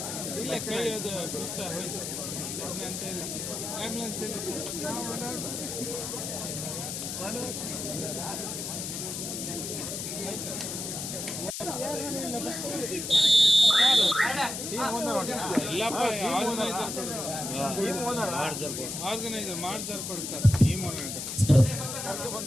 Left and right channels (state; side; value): noise; left; hiss, 5 dB below the sound